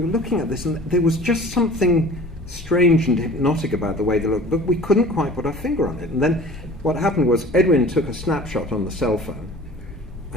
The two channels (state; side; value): normal; both; correlation 0.44